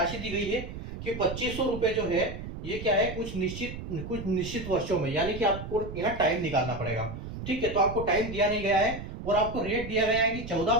दी गई है कि 2500 रुपए जो है ये क्या है, कुछ निश्चित वर्षों में, यानी कि आपको यहाँ टाइम निकालना पड़ेगा, ठीक है। तो आपको टाइम दिया नहीं गया है और आपको रेट दिया गया है कि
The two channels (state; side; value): noise; right; rumble, 9 dB below the sound